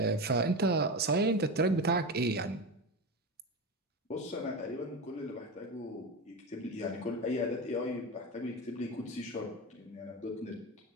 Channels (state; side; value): normal; both; correlation 0.21